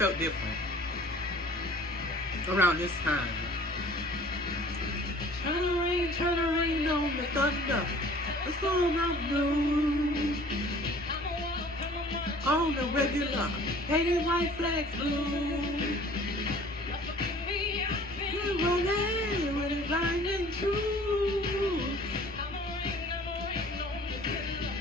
different around this time. Turn the rain on the thunder. Let's go on the blue. On the regular, painted white flags blue. When it's blinding true,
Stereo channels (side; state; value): both; normal; correlation 0.50